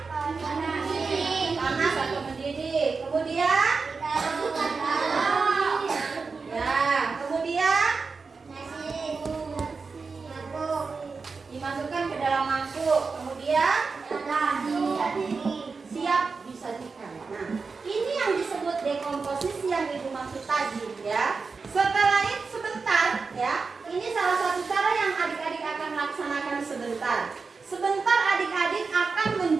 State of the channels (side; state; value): left; quieter; 4.6 dB